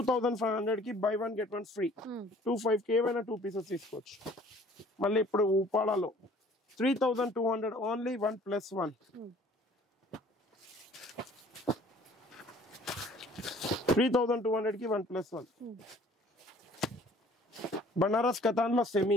కి buy one get one free. 25 కి ఏమైనా 2 పీసెస్ తీసుకోవచ్చు. మళ్ళీ ఇప్పుడు ఉపాడాలో 3200 ఓన్లీ, 1+1. 3200 కి 1+1. బనారస్ కతాన్ లో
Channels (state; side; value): normal; both; correlation 0.54